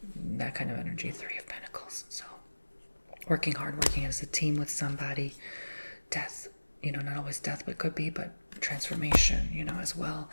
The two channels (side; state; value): both; inverted; correlation -1.00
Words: that kind of energy. 3 of Pentacles. So working hard, working as a team with somebody. Death, you know, not always death, but could be, but transformation, you know, as well.